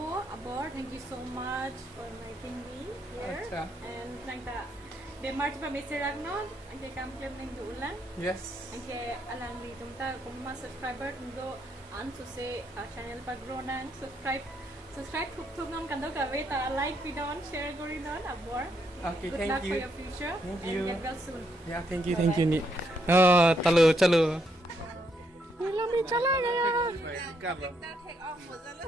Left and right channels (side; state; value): both; normal; correlation 0.75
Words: Abor. Thank you so much for inviting me here. Acha. And thank you. De March pa Mr. Ragnon, ang kay kamplem ng duulan. yes Ang kay alang di tumta kung mga subscriber ndo an so say channel pa grow na subscribe thuk nam kandaw ka wait like video and share gori non Abor. okay Good thank luck you for your future. Thank and you. get well soon. yeah thank you ni chalo lami chala gaya